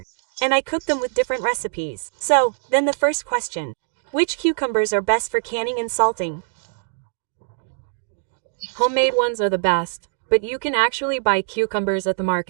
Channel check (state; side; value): silent; left; digital silence